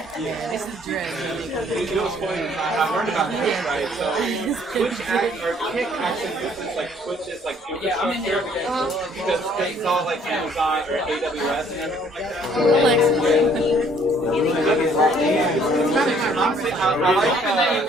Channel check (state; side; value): normal; both; correlation 0.61